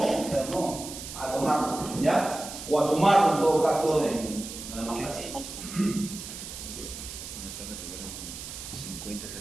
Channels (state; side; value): noise; right; hiss, 10 dB below the sound